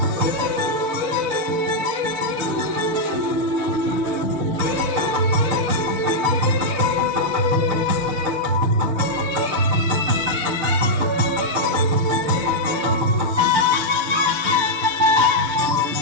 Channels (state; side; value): late; left; 6.7 ms